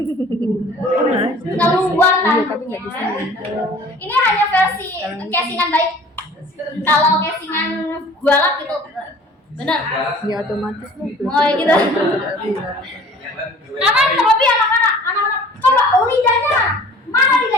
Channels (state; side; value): normal; both; correlation 0.48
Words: tanduknya. Ini hanya versi casingan baik. Kalau casingan gualak gitu, benar? Ya otomatis lah. Oh gitu. Karena terlebih anak-anak coba lidahnya, mana